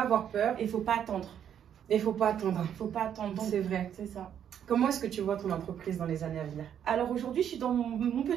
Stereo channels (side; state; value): left; quieter; 9.2 dB